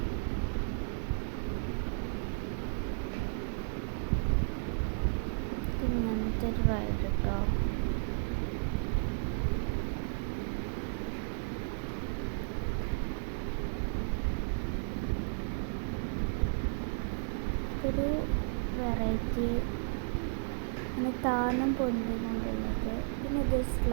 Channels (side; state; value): left; silent; digital silence